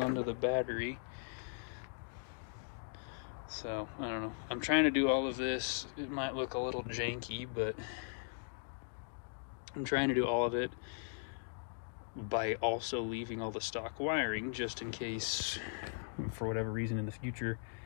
the battery. So I don't know. I'm trying to do all of this. It might look a little janky, but I'm trying to do all of it by also leaving all the stock wiring, just in case, for whatever reason in the future,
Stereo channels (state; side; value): silent; right; digital silence